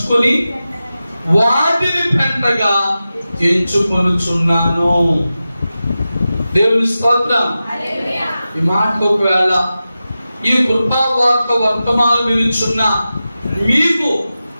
వాటిని పెంటగా ఎంచుకొనుచున్నాను. దేవుని స్తోత్రం. ఈ మాట ఒకవేళ ఈ కృపావార్త వర్తమానం వినుచున్న మీకు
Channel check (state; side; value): inverted; both; correlation -0.93